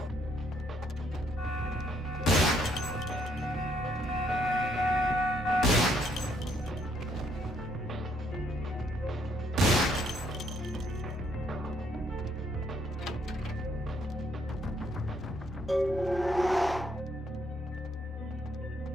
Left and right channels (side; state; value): both; normal; correlation 0.70